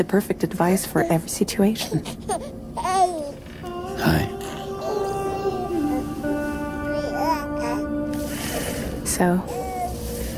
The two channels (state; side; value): identical; both; correlation 1.00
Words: perfect advice for every situation. Hi. So,